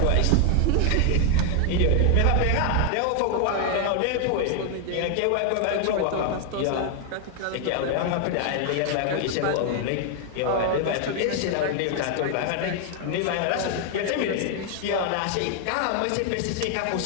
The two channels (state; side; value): different; both; correlation 0.00